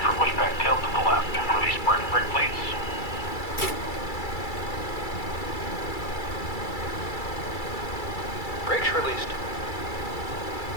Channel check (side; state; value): right; late; 2.3 ms